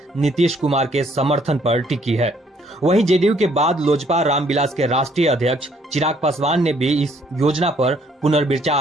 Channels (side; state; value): both; normal; correlation 0.65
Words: नीतीश कुमार के समर्थन पर टिकी है। वहीं जेडीयू के बाद लोजपा रामविलास के राष्ट्रीय अध्यक्ष चिराग पासवान ने भी इस योजना पर